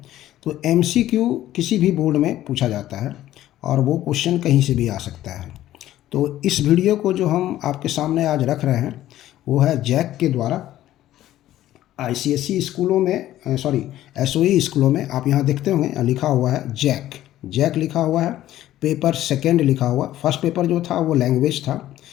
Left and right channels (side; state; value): right; quieter; 13.7 dB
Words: तो एमसीक्यू किसी भी बोर्ड में पूछा जाता है, और वो क्वेश्चन कहीं से भी आ सकता है। तो इस वीडियो को जो हम आपके सामने आज रख रहे हैं वो है जैक के द्वारा आईसीएसई स्कूलों में, एसओई स्कूलों में। आप यहाँ देखते होंगे लिखा हुआ है जैक लिखा हुआ है। पेपर सेकंड लिखा हुआ। फर्स्ट पेपर जो था वो लैंग्वेज था,